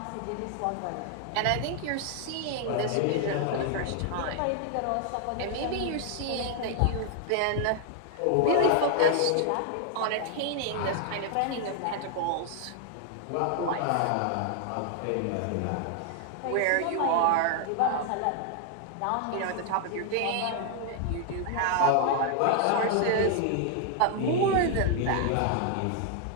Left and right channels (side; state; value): both; different; correlation 0.00